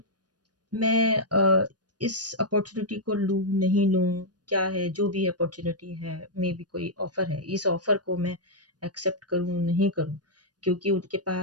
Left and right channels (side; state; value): left; late; 0.69 ms